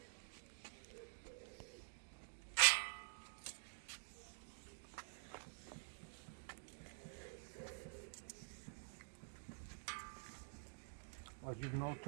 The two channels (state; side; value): silent; left; digital silence